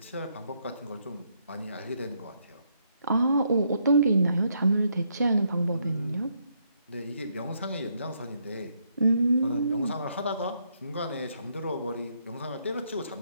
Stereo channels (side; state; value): both; inverted; correlation -0.75